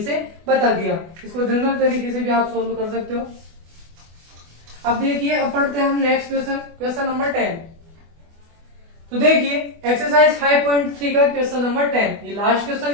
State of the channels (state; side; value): late; left; 24 ms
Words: से बता दिया, इसको जनरल तरीके से भी आप सॉल्व कर सकते हो। अब देखिए, अब पढ़ते हैं हम नेक्स्ट क्वेश्चन, क्वेश्चन नंबर 10। तो देखिए एक्सरसाइज 5.3 का क्वेश्चन नंबर 10, ये लास्ट क्वेश्चन